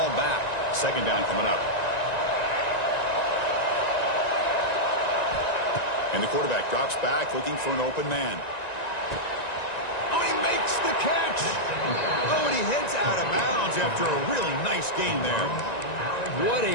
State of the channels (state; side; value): late; right; 1.9 ms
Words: back. Second down coming up. And the quarterback drops back looking for an open man. Oh, he makes the catch. Oh, and he heads out of bounds after a really nice gain there. What